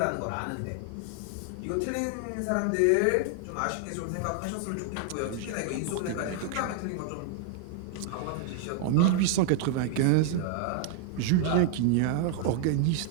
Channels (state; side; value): different; both; correlation -0.01